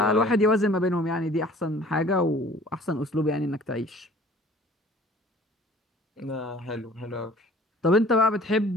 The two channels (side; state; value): both; normal; correlation 0.50